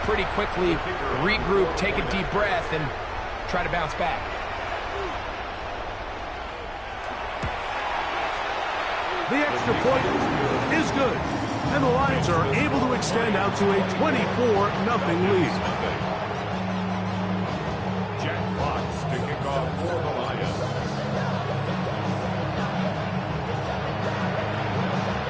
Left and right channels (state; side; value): identical; both; correlation 1.00